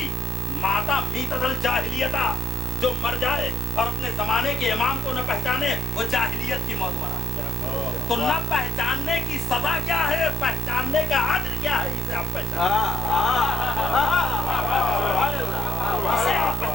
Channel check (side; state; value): both; normal; correlation 0.75